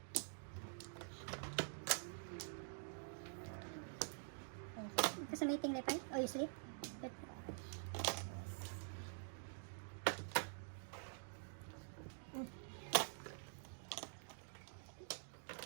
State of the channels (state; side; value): silent; left; digital silence